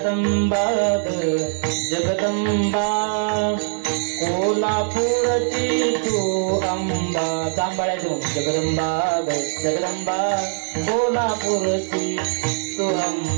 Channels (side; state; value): left; silent; 64 dB below the other